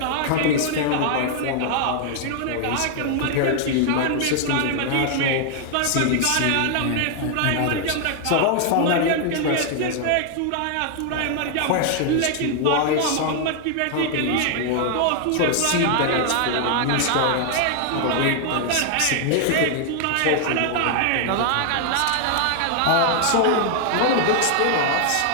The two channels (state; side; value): different; both; correlation 0.00